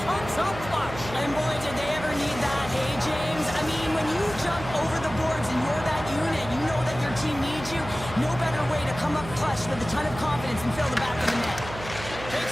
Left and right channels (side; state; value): right; noise; hum, 12 dB below the sound